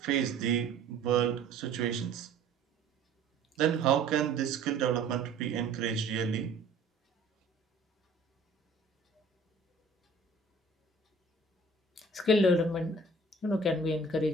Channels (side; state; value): left; quieter; 3.4 dB